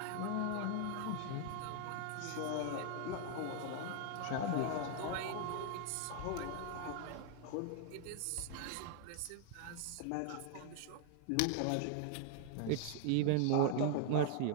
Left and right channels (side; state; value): both; different; correlation 0.00